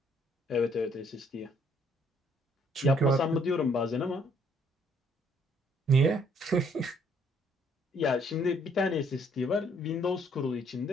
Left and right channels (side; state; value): both; normal; correlation 0.65